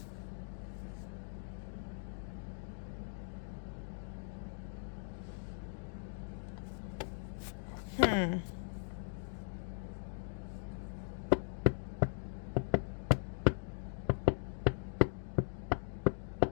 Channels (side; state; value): right; silent; digital silence